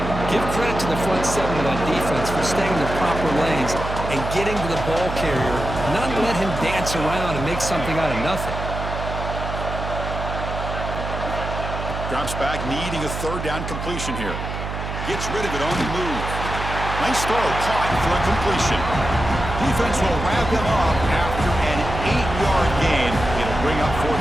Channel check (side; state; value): right; noise; hum, 6 dB below the sound